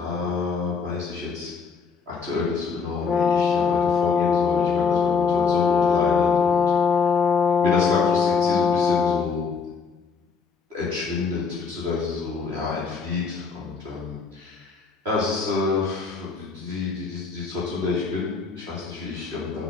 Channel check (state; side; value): quieter; right; 5.3 dB